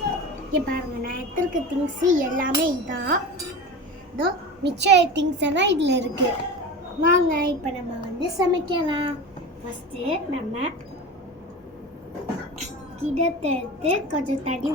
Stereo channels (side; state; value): both; normal; correlation 0.30